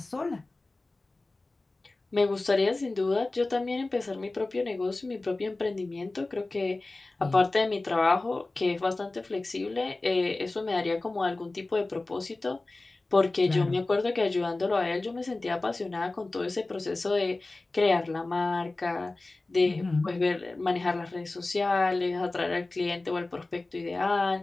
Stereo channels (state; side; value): quieter; right; 3.1 dB